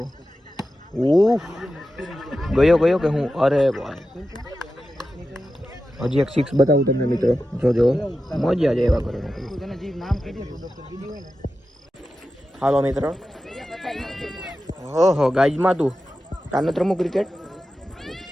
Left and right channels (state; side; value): normal; both; correlation 0.92